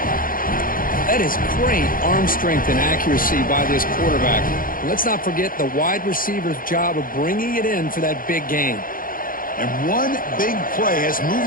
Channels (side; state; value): right; late; 0.41 ms